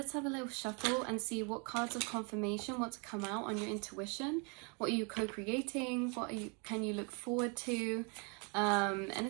have a little shuffle and see what cards of confirmation want to come out on your intuition. What are you co-creating? Can you look forward to?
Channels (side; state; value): left; quieter; 33.9 dB